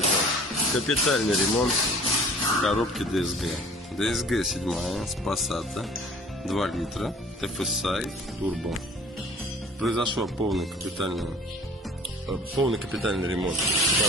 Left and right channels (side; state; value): both; normal; correlation 0.48